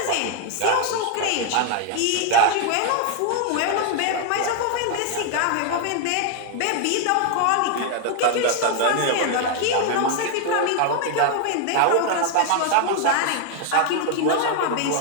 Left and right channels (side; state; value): both; different; correlation 0.00